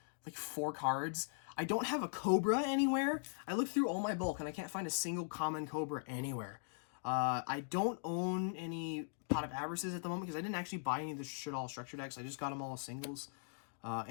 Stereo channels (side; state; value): right; silent; digital silence